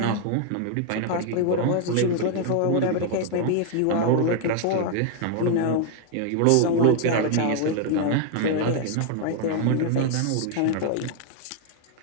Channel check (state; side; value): different; both; correlation 0.00